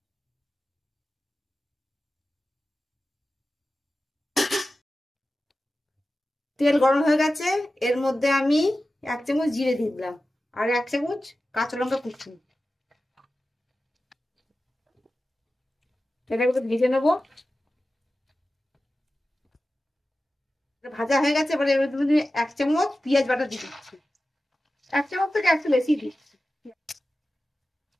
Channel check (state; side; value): normal; both; correlation 0.94